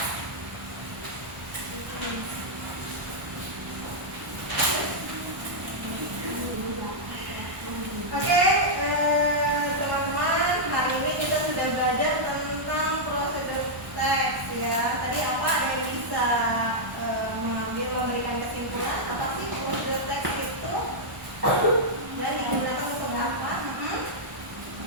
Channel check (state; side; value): late; left; 1.1 ms